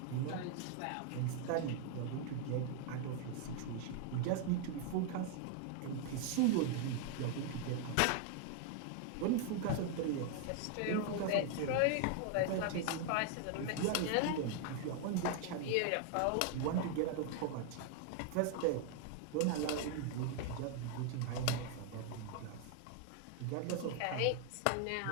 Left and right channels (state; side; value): different; both; correlation 0.00